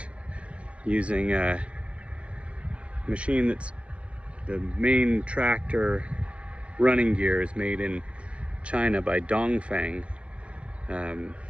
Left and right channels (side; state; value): left; late; 0.061 ms